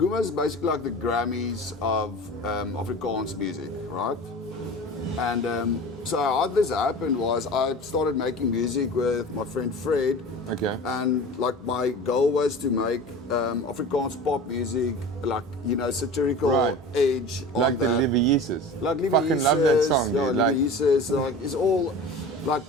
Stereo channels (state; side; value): normal; both; correlation 0.36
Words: is basically like the Grammys of Afrikaans music, right? And so how this happened was I started making music with my friend Fred. Okay. And like my goal was to make Afrikaans pop music, like, you know, satirical Right. edge on Like the that. Lieve Like Lieve Fucking love that Jezus, song, yeah, dude. Like, Lieve Jezus, like it's all like